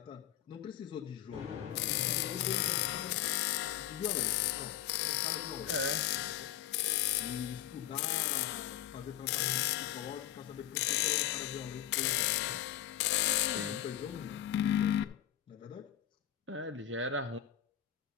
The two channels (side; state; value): right; quieter; 11.7 dB